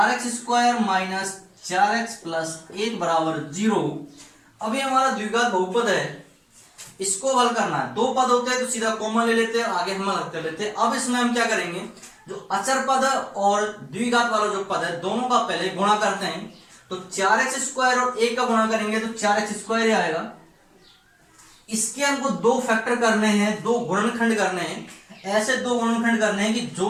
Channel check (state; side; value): identical; both; correlation 1.00